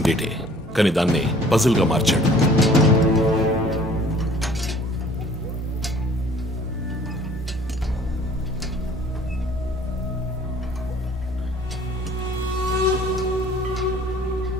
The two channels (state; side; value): normal; both; correlation 0.53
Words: డేటే, కానీ దాన్ని పజిల్గా మార్చాడు.